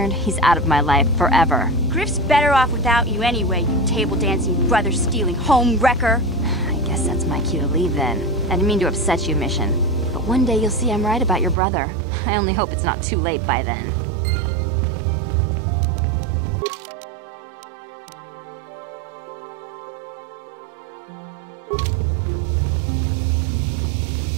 he's out of my life forever. Griff's better off without you anyway, you table-dancing, brother-stealing home wrecker. I guess that's my cue to leave then. I didn't mean to upset you, Mission. But one day you'll see I'm right about your brother. I only hope it's not too late by then.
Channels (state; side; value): drops out; left; at 11.6 s